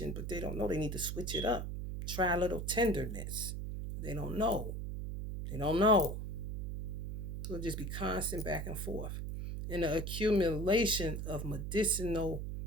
but they don't know they need to switch it up. Try a little tenderness. They don't know. They don't know. It'll just be constant back and forth. And the accumulation of medicinal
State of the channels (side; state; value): right; noise; hum, 4 dB below the sound